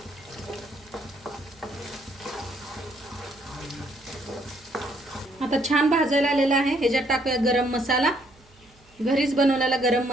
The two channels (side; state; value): right; noise; hum, 29 dB below the sound